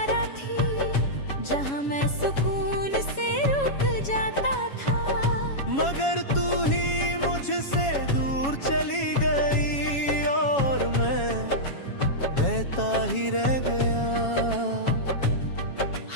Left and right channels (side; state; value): right; late; 7.2 ms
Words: थी, जहाँ मैं सुकून से रुक जाता था। मगर तू ही मुझसे दूर चली गई और मैं बहता ही रह गया।